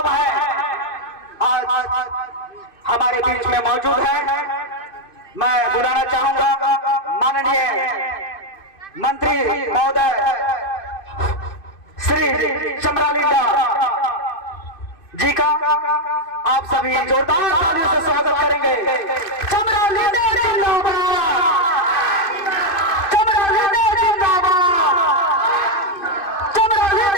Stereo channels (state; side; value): late; right; 2.5 ms